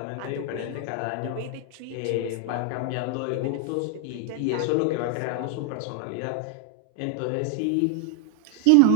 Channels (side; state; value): both; different; correlation 0.00